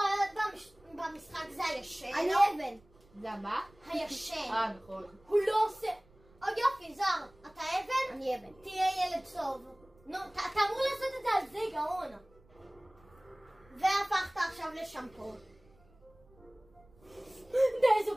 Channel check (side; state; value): right; noise; rumble, 29 dB below the sound